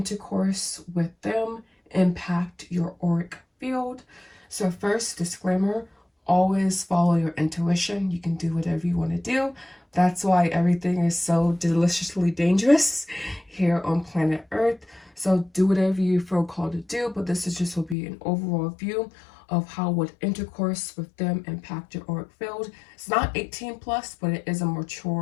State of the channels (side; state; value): right; drops out; at 17.9 s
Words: with them impact your auric field. So first, disclaimer, always follow your intuition. You can do whatever you want to do. That's why everything is so deliciously dangerous here on planet Earth. So do whatever you feel called to do, but this is just will be an overall view of how would intercourse with them impact your auric field. It's not 18 plus, but it is a